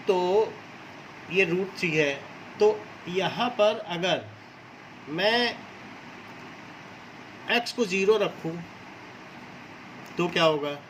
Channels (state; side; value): identical; both; correlation 1.00